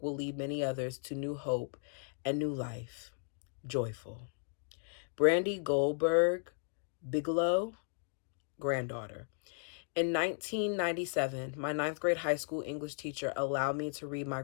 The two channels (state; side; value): silent; right; digital silence